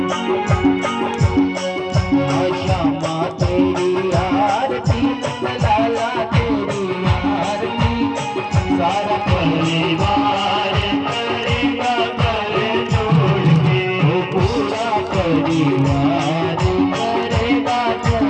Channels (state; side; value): identical; both; correlation 1.00